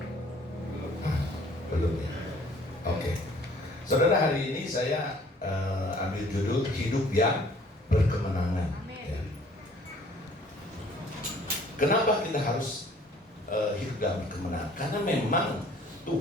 Ya. Belum ya. Oke. Saudara, hari ini saya ambil judul hidup yang berkemenangan. Ya. Kenapa kita harus hidup dalam kemenangan? Karena memang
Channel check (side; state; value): both; normal; correlation 0.56